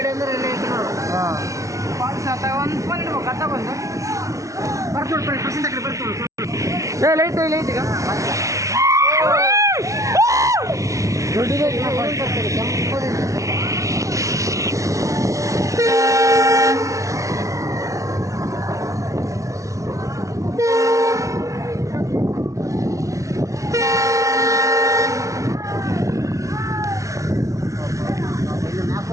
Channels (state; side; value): late; left; 0.15 ms